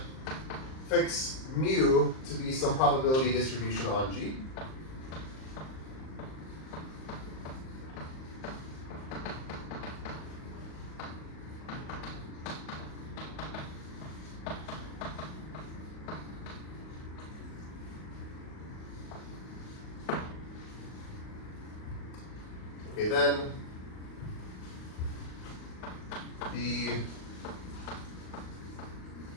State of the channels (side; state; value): right; late; 38 ms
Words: fix mu to be some probability distribution on G. Okay, then the